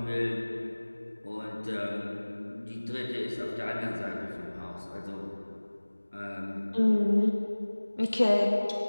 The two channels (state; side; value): inverted; both; correlation -1.00